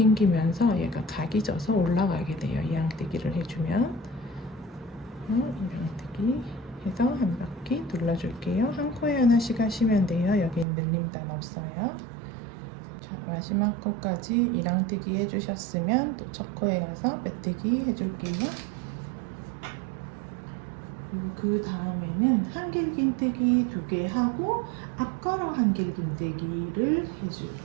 얘가 각이 져서 올라가게 돼요. 이랑뜨기를 해주면 이랑뜨기 해서 한 바퀴 눌러줄게요. 한 코에 하나씩 하시면 돼요. 여기 늘림단 없어요. 자, 마지막 코까지 이랑뜨기 해주셨으면 또 첫 코에 가서 빼뜨기 해줄게요. 그리고 그 다음에는 한길긴뜨기 2개 하고 앞걸어 한길긴뜨기를 해줄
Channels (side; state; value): left; drops out; at 10.7 s